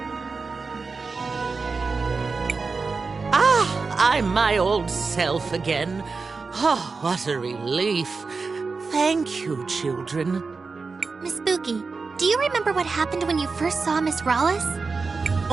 I'm my old self again. Oh, what a relief. Thank you, children. Miss Spooky, do you remember what happened when you first saw Miss Rawless?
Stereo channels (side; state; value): left; quieter; 4.5 dB